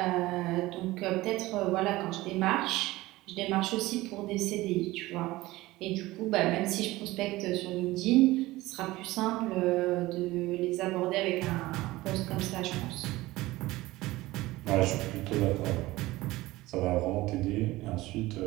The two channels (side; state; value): left; quieter; 18.6 dB